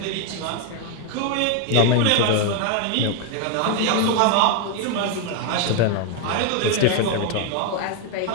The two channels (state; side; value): different; both; correlation 0.01